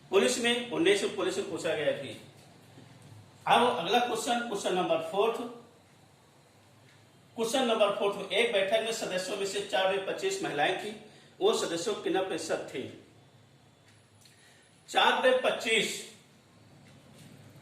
पुलिस में 19 पुलिस में पूछा गया थी। अब अगला क्वेश्चन नंबर 4। क्वेश्चन नंबर 4 में एक बैठक में सदस्यों में से 4/25 महिलाएं थी, वो सदस्यों की कितना प्रतिशत थी, 4/25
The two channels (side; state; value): both; identical; correlation 1.00